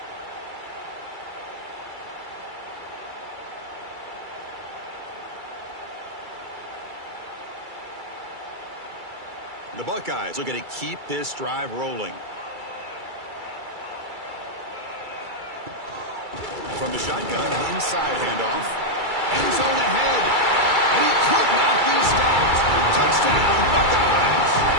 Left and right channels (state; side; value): late; left; 2.3 ms